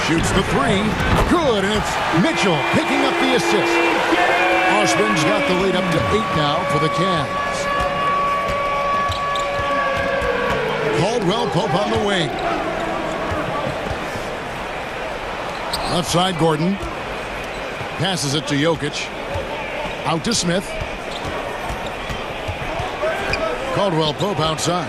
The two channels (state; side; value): identical; both; correlation 1.00